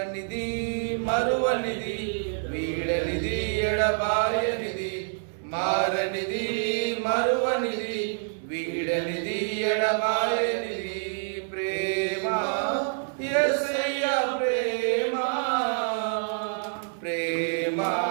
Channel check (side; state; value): left; silent; digital silence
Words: మరువనిది వీడనిది ఎడబాయనిది, మారనిది మరువనిది వీడనిది ఎడబాయనిది, ప్రేమ యేసయ్య ప్రేమ, ప్రేమ